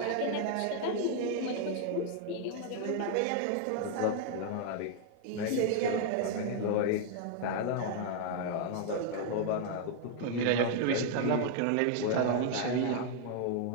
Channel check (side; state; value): both; different; correlation 0.00